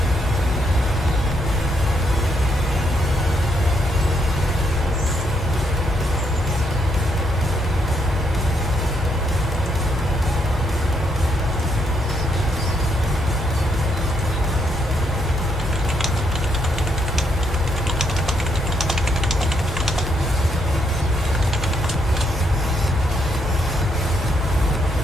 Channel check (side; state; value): both; normal; correlation 0.75